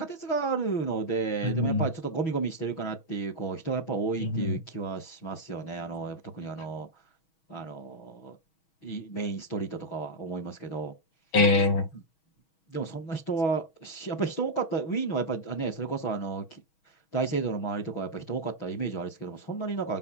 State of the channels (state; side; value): late; right; 6.3 ms